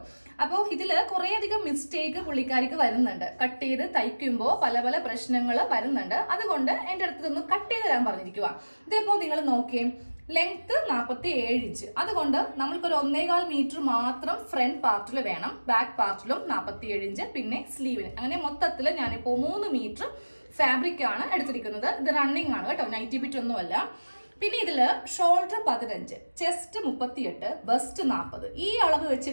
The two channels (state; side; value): inverted; both; correlation -1.00